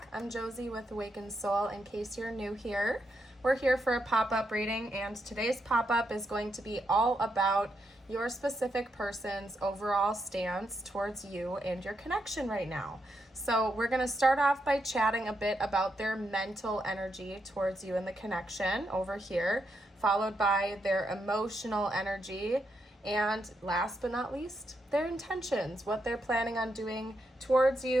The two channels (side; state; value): both; normal; correlation 0.81